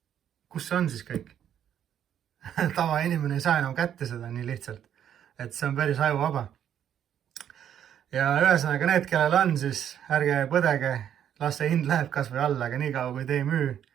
Kus see on siis kõik? Tavainimene ei saa enam kätte seda nii lihtsalt, et see on päris ajuvaba. Ja ühesõnaga need, kellel on, siis ärge põdege, las see hind läheb kas või alla, aga nii kaua kui te ei müü,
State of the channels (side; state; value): left; quieter; 9.7 dB